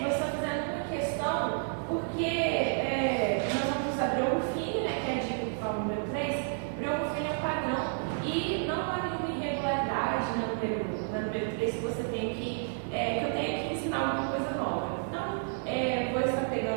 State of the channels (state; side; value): silent; left; digital silence